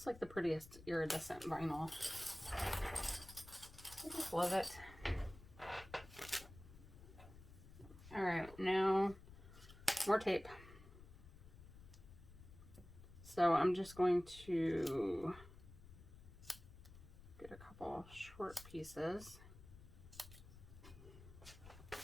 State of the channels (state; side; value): noise; left; rumble, 17 dB below the sound